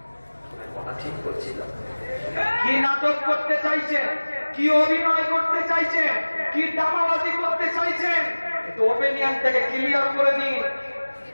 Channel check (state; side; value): inverted; both; correlation -1.00